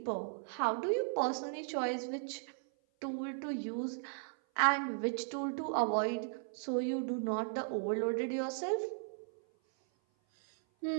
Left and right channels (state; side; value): silent; left; 54 dB below the other